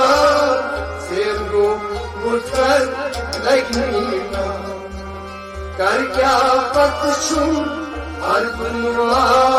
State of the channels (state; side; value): identical; both; correlation 1.00